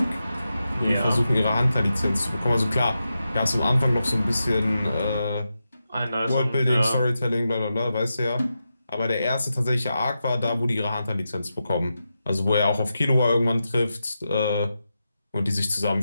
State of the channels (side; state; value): both; inverted; correlation -0.89